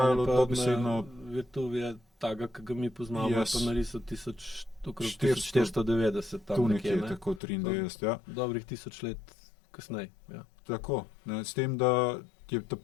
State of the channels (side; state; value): right; drops out; at 7.4 s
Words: dobesedno... Virtuvije taga, ki ga mi poznamo, pa narisal okrog 490, 1490, tam nekje, ne? Tako 93, ja. Dobrih 1000 let kasneje, ja. Tako, ne, s tem, da je ta